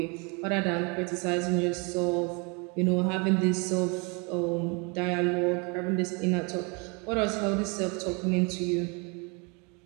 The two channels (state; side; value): quieter; left; 31.6 dB